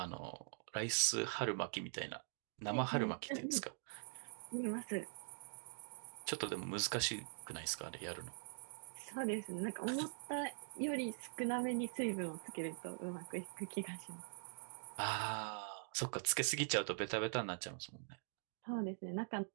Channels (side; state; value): left; silent; digital silence